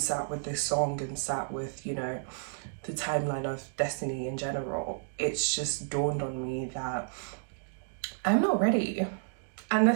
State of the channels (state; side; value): silent; left; digital silence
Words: with this song and sat with, you know, the timeline of destiny in general, it's just dawned on me that I'm not ready. And